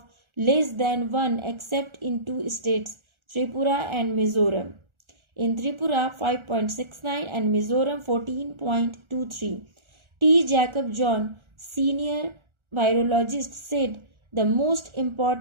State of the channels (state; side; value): late; left; 1.4 ms